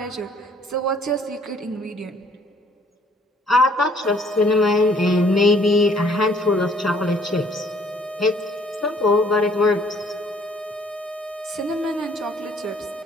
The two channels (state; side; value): normal; both; correlation 0.60